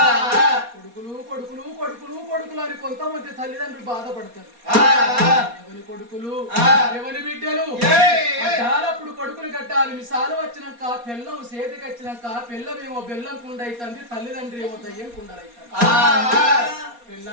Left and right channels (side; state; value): left; late; 4.2 ms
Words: కొడుకులు కొడుకులు కొడుకులు కొడుకులు అని కొంతమంది తల్లిదండ్రులు బాధపడతారు ఎవరి కొడుకులు ఎవరి బిడ్డలు అప్పుడు కొడుకులు కట్టాలి మిసాలు వచ్చినాక పిల్లం సేతికి వచ్చినాక పిల్లమేమో బెల్లం కుండ అవుతుంది తల్లిదండ్రి ఏమో దయ్యం కుండలవుతారు